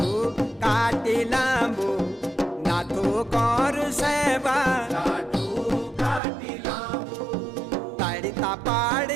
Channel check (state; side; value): drops out; left; at 6.2 s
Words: लांबू नाथू कर सेवा लाठू काटी लांबू तड़ता